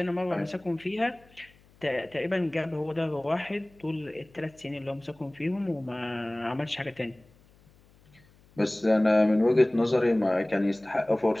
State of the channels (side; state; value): left; noise; hum, 29 dB below the sound